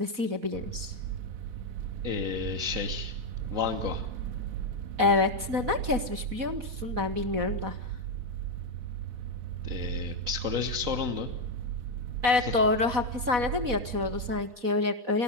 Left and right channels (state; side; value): late; left; 4.1 ms